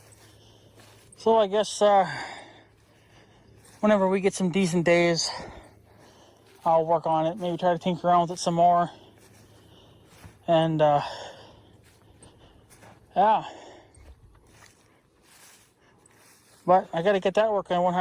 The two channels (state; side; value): identical; both; correlation 1.00